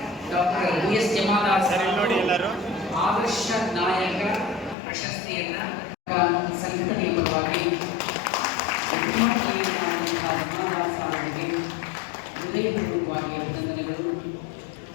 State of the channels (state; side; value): drops out; right; at 4.8 s